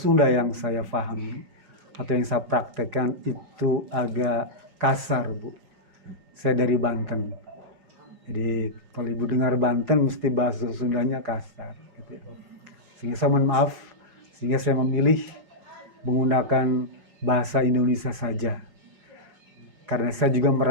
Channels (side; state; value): left; late; 5.4 ms